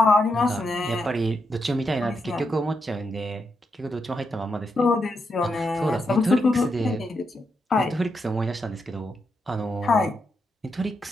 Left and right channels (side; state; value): both; normal; correlation 0.82